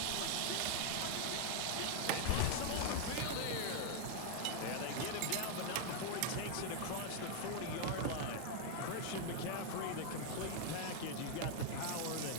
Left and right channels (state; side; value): different; both; correlation 0.00